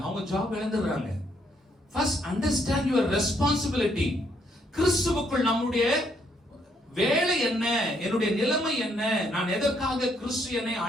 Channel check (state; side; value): normal; both; correlation 0.72